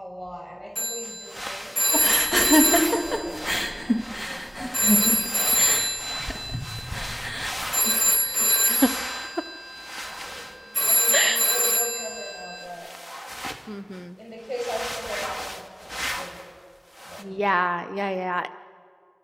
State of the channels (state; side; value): identical; both; correlation 1.00